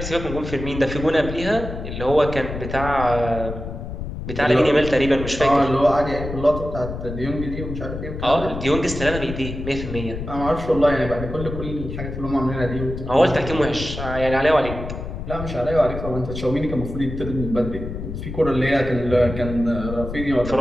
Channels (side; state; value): left; noise; rumble, 7 dB below the sound